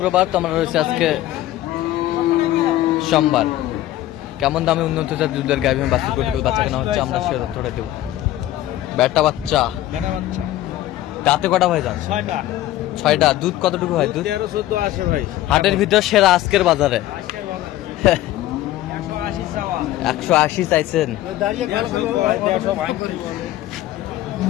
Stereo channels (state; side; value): quieter; right; 14.5 dB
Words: তো আমরা রয়েছে আজকে সোমবার। কেমন দামে উন্নত দুধের গাভী বাচ্চা কেনা হচ্ছে আমরা সে তথ্যটা দেবো। বেটা বাচ্চা দাঁতে কটা ভাই যান? 6টা। দুধ কতটুকু হয়? দুধ 13-14 আসে ভাই। হাটের ভিতর সেরা আজকের বাজারে 180 চাইছেন।